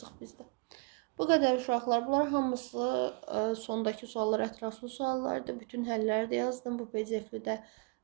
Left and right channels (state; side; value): quieter; left; 32.3 dB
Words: bizdə. Bu qədər uşaqlar. Bunlar hamısı sondakı suallar ətraflı suallardır. Bütün həlləri də yazdım. Bu PDF-li də